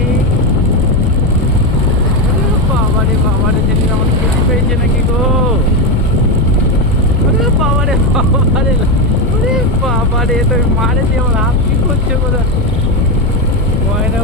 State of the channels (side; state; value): both; normal; correlation 0.11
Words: বাবারে সেদিন আমার খেতে পেয়েছে নাকি গো, বাবারে তুমি মারে দিয়ে আমার হাত কি করছে বোধ, ময়না